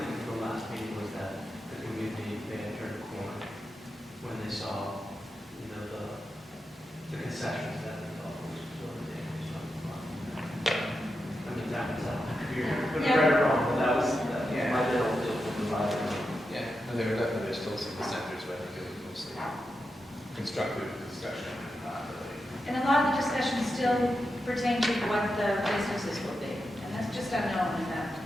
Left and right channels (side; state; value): both; normal; correlation 0.88